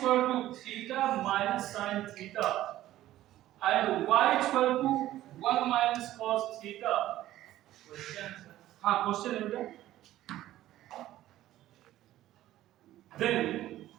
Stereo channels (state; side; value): quieter; left; 14.2 dB